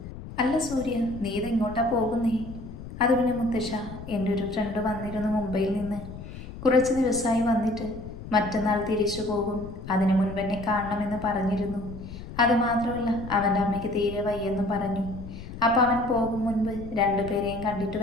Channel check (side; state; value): left; noise; rumble, 12 dB below the sound